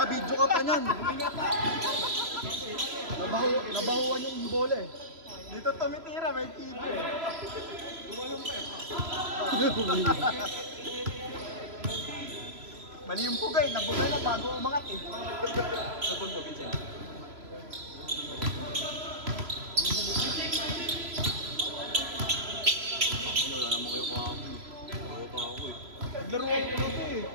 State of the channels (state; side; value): late; left; 3.0 ms